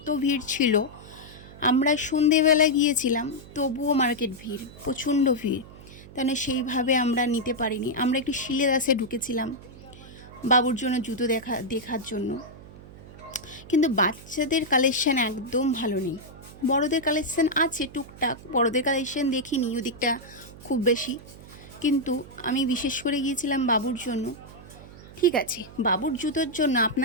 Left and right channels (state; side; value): noise; right; hum, 18 dB below the sound